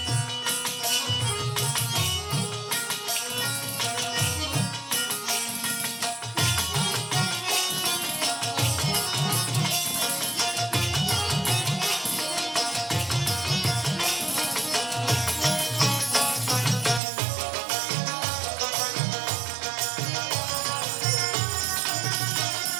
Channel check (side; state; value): left; drops out; at 17.0 s